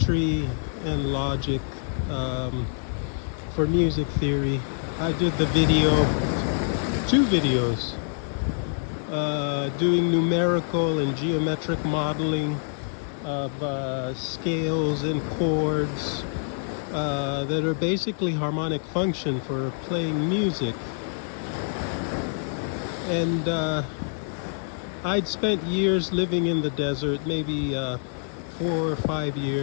and logic for music theory. I did the video, two videos, doing numerical and geometric modeling of scales and chords that are basically harmonic function for playing music. And I'd spent years living in the desert, maybe 4 or 5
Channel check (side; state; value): right; silent; digital silence